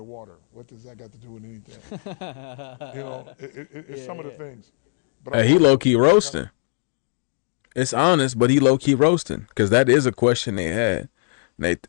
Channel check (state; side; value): silent; right; 64 dB below the other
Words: What does that got to do with anything? It's some of the things. But He low key roasting. It's honest, but he low key roasting because that is a question they had.